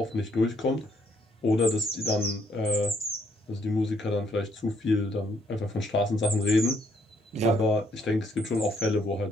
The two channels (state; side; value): normal; both; correlation 0.70